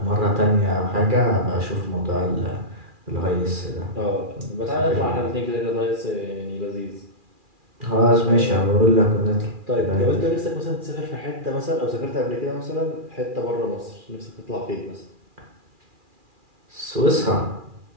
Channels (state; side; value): late; left; 2.4 ms